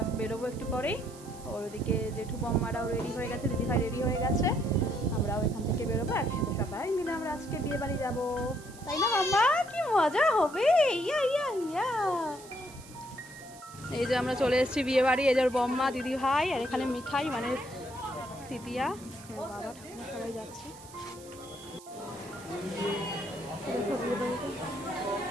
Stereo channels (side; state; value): right; noise; hiss, 20 dB below the sound